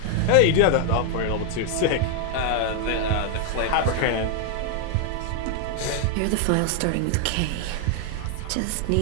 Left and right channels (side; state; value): both; different; correlation 0.00